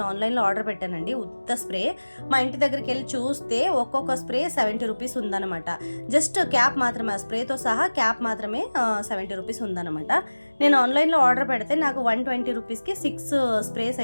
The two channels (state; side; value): inverted; both; correlation -1.00